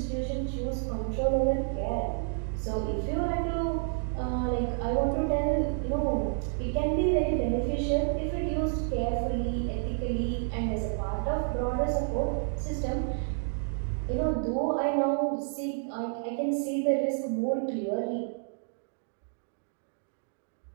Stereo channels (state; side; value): silent; left; digital silence